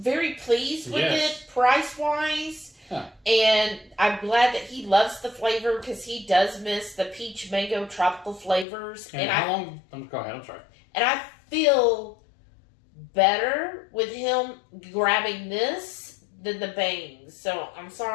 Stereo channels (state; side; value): drops out; right; at 8.7 s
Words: pleased with it price-wise. Huh. And I'm glad that he loves the flavor because he does miss the peach mango tropical flavors. And how long? Go ahead, I'm sorry. And I feel better with him grabbing this than the bangs. So I'm